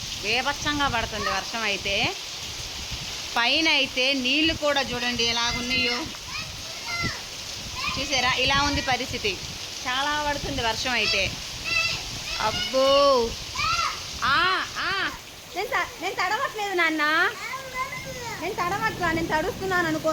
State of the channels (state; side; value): identical; both; correlation 1.00